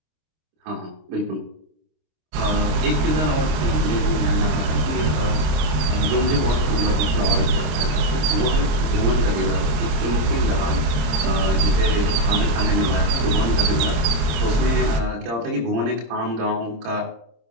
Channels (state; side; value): late; left; 26 ms